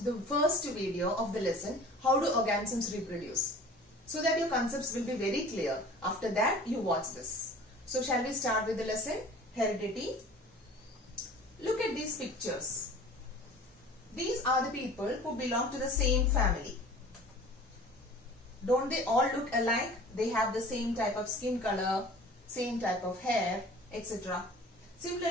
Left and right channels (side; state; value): both; normal; correlation 0.44